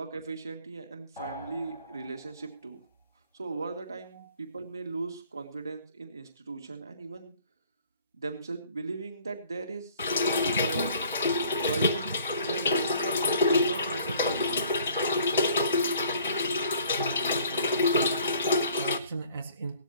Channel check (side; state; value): both; inverted; correlation -0.57